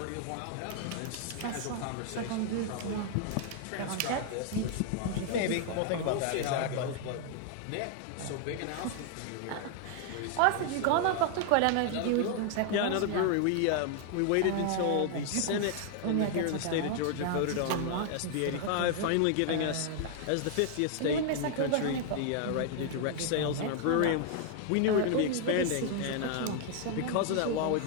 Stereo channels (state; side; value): different; both; correlation 0.00